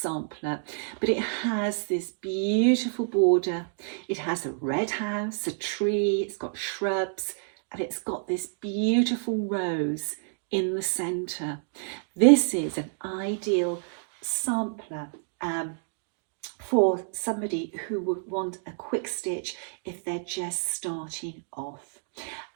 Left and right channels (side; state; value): left; silent; digital silence